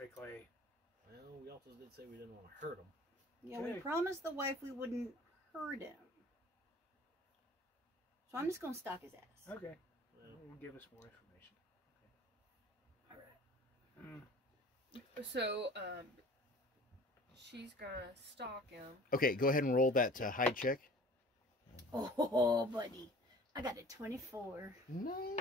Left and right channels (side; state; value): both; normal; correlation 0.46